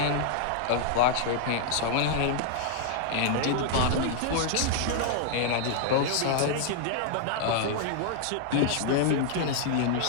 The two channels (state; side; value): different; both; correlation -0.01